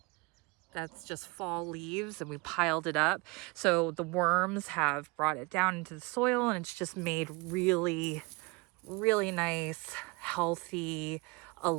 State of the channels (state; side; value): quieter; left; 26.0 dB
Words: that's just fall leaves, and we piled it up. So the worms have brought it down into the soil, and it's just made really, really nice, healthy,